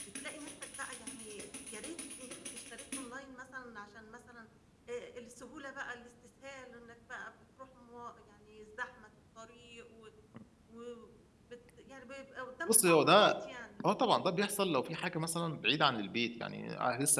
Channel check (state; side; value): identical; both; correlation 1.00